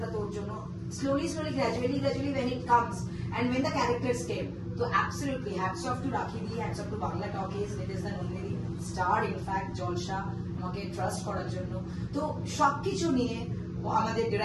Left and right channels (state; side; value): identical; both; correlation 1.00